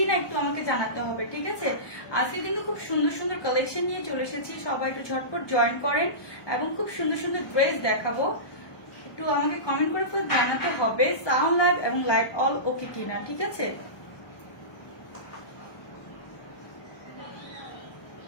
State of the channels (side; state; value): right; late; 1.2 ms